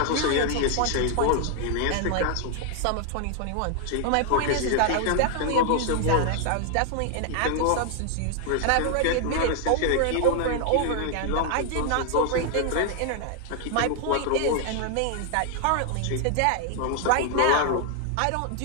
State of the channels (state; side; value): different; both; correlation 0.00